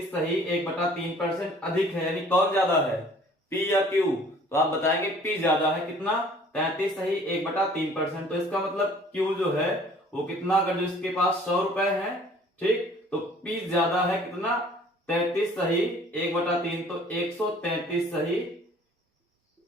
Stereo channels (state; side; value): normal; both; correlation 0.53